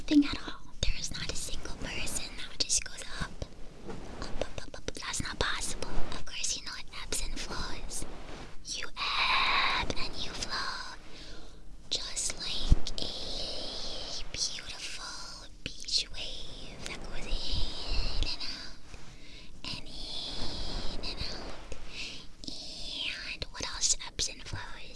at all. There is not a single person that just goes up. Up. That's not possible. Of course, you know it ebbs and flows. You ebb and you flow. Just like a beautiful beach wave that goes in and out. And in and out. And what else ebbs and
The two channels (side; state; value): both; identical; correlation 1.00